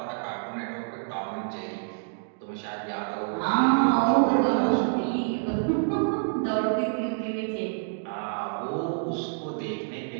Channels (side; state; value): left; silent; digital silence